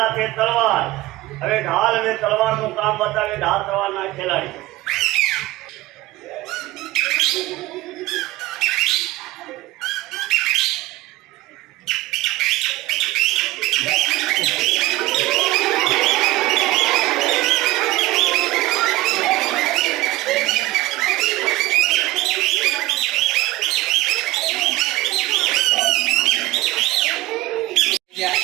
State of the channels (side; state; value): left; quieter; 18.4 dB